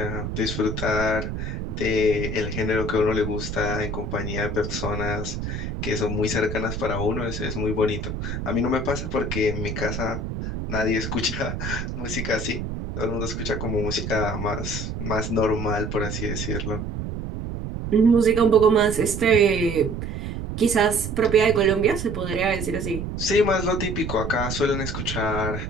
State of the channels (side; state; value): right; noise; rumble, 5 dB below the sound